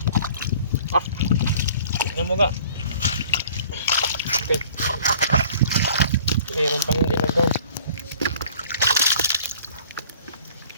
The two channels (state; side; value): inverted; both; correlation -0.50